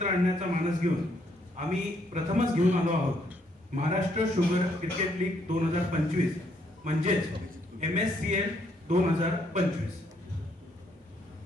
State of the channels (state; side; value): normal; both; correlation 0.71